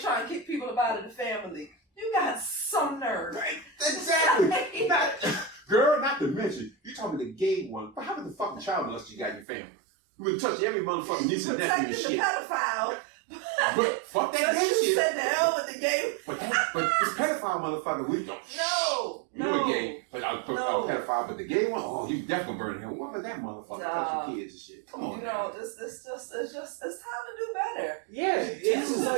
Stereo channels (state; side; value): drops out; left; at 9.5 s